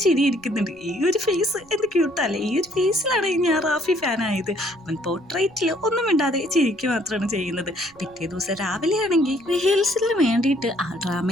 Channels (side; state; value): right; noise; rumble, 29 dB below the sound